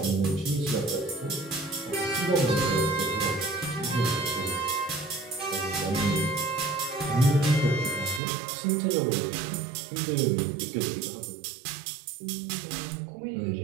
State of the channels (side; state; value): left; drops out; at 8.2 s